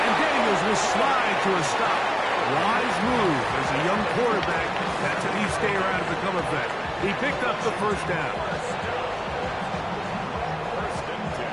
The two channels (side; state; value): both; identical; correlation 1.00